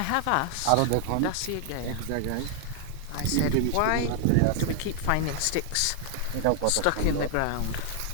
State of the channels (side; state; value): both; different; correlation 0.00